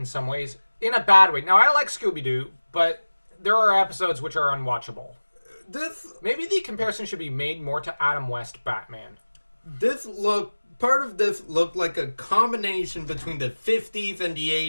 some ways, in a bad way. Now, I like Scooby-Doo, but there are episodes which are unwatchable. Maybe the comparison should be made more to Adam West Batman. Part of this looked like a combination between the 50s and the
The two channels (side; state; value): both; inverted; correlation -1.00